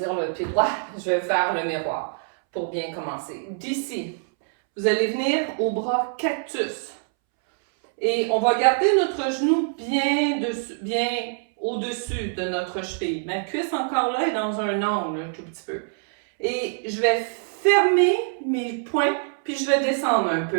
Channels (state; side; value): silent; left; 62 dB below the other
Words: le pied droit, je vais faire le miroir pour bien commencer. D'ici, vous allez venir au bras cactus. Et on va garder notre genou bien au-dessus de notre cheville. Ma cuisse encore là est dans un angle un tout petit peu. Et je vais fermer mes poings, puis je vais descendre un